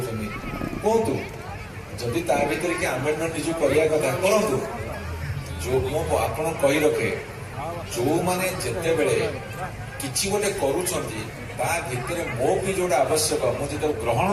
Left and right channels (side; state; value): both; identical; correlation 1.00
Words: କୁହନ୍ତୁ, ଯଦି ତା ଭିତରେ କି ଆମେଣ୍ଡମେଣ୍ଟ ନିଜକୁ କରିବା କଥା କରନ୍ତୁ। ଯୋଉ ମୁଁ ଆପଣ କହି ରଖେ, ଯୋଉମାନେ ଯେତେବେଳେ କିଛି ଗୋଟେ କରୁଛନ୍ତି ତା ଭିତରେ ମୋ ବି ଯୋଉଟା ଆବଶ୍ୟକ ମୁଁ ଯେତେବେଳେ ଗ୍ରହଣ